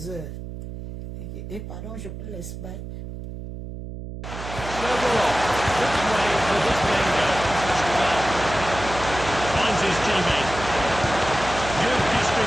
heures. Et pardon, je peux laisser bailler.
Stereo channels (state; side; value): noise; right; hum, 9 dB below the sound